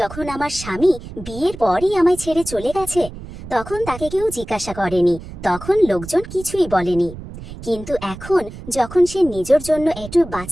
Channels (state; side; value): noise; right; rumble, 13 dB below the sound